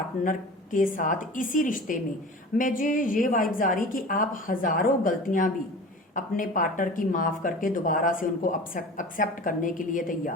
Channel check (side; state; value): both; normal; correlation 0.37